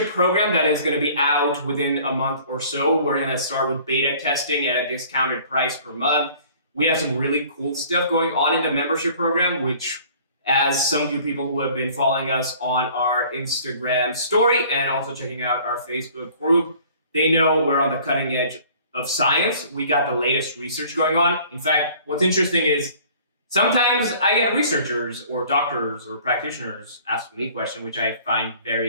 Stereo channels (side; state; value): both; inverted; correlation -0.52